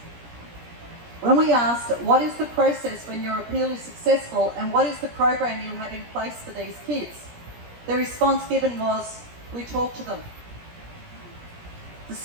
When we asked, what is the process when your appeal is successful and what is the program you have in place for these kids? The response given was, we talk to them. The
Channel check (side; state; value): left; late; 17 ms